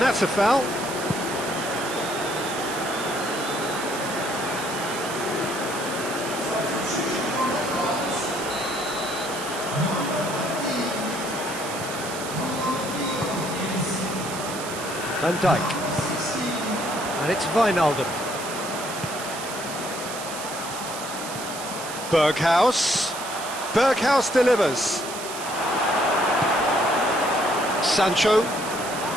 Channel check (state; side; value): noise; right; hiss, 9 dB below the sound